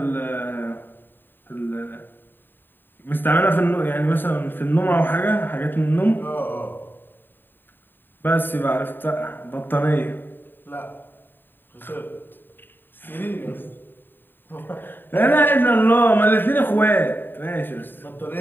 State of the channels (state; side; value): late; right; 0.094 ms